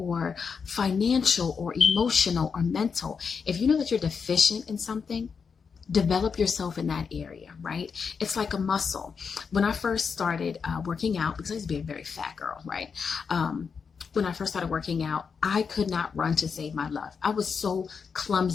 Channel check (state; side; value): quieter; right; 5.9 dB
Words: financial or emotional or mental, if you know that you're deficient in something, develop yourself in that area, right? It's like a muscle. When I first started working out, because I used to be a very fat girl, right? When I first started working out, I could not run to save my life. I was so